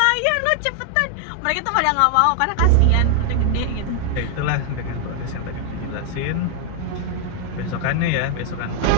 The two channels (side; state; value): both; different; correlation 0.00